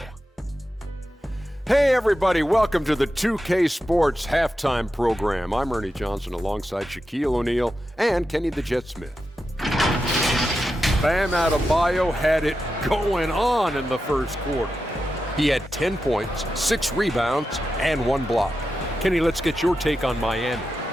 Hey everybody, welcome to the 2K Sports Halftime Program. I'm Ernie Johnson alongside Shaquille O'Neal and Kenny the Jet Smith. Bam Adebayo had it going on in the first quarter. He had 10 points, 6 rebounds, and 1 block. Kenny, let's get your take on Miami.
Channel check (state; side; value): normal; both; correlation 0.90